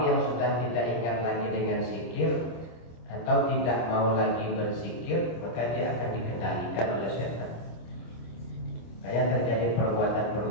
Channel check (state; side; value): late; right; 25 ms